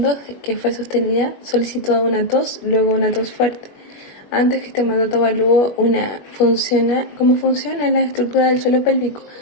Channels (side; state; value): right; late; 21 ms